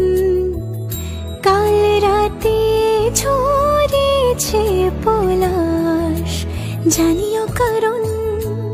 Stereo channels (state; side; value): identical; both; correlation 1.00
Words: কাল রাতে ঝরেছে পলাশ, জানিও কারণ